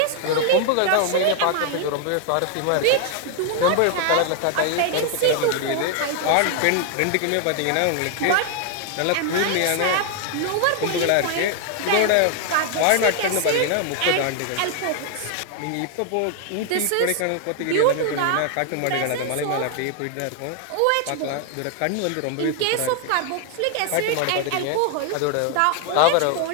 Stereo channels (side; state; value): both; different; correlation 0.00